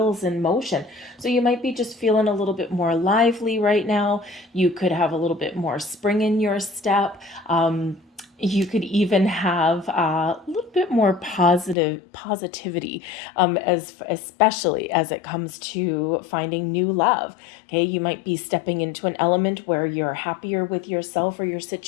in motion. So you might be just feeling a little bit more lively right now. You could have a little bit more spring in your step. You could even have a little bit more positivity, especially as it comes to finding new love. Okay, you might be stepping into an element where you're happier with yourself or your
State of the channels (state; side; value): drops out; right; at 11.8 s